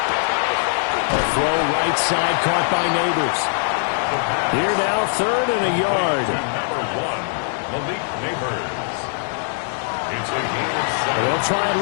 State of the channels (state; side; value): silent; right; 65 dB below the other